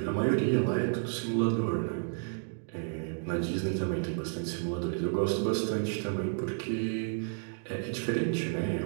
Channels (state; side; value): silent; left; 57 dB below the other